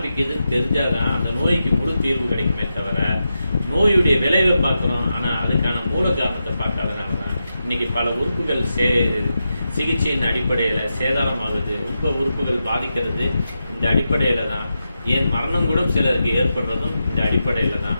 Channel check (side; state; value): both; inverted; correlation -0.88